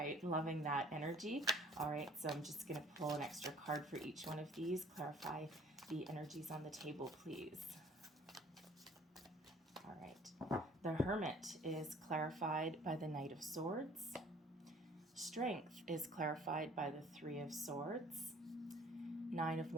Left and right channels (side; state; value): both; normal; correlation 0.53